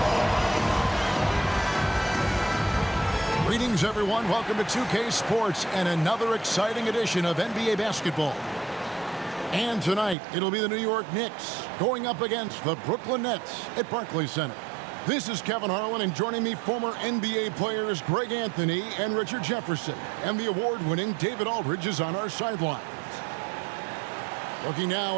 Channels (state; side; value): drops out; left; at 10.2 s